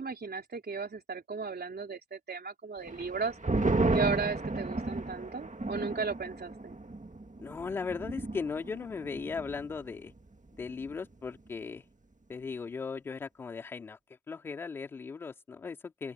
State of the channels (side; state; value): both; normal; correlation 0.53